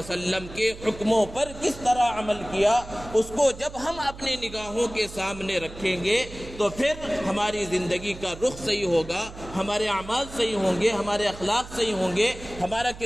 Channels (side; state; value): right; noise; hum, 15 dB below the sound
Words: کے حکموں پر کس طرح عمل کیا اس کو جب ہم اپنی نگاہوں کے سامنے رکھیں گے تو پھر ہماری زندگی کا رخ صحیح ہوگا، ہمارے اعمال صحیح ہوں گے، ہمارے اخلاق صحیح ہوں گے، ہمارا